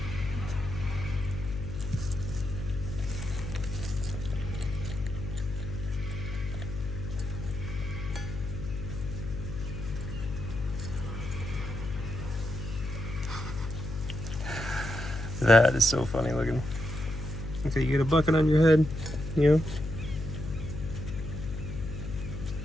That is so funny looking. Okay, you get a bucket on your head, you know?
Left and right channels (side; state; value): left; noise; hum, 6 dB below the sound